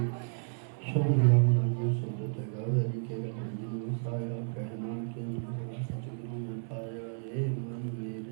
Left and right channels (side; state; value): left; silent; 56 dB below the other